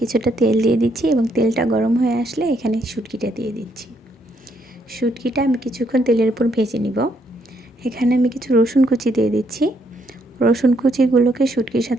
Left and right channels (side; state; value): both; normal; correlation 0.73